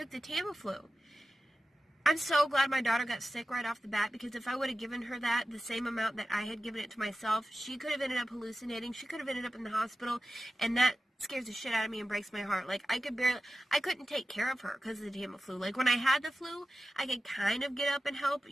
the Tamiflu. I'm so glad my daughter got sick right off the bat, because if I would have given her the same amount that I had given it to myself, she could have ended up hallucinating. She could have ended up in the hospital, and that scares the shit out of me and breaks my heart. Like, I couldn't take care of her because of the Tamiflu. Like, when I had the flu, I could kind of get up and help,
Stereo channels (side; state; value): both; normal; correlation 0.94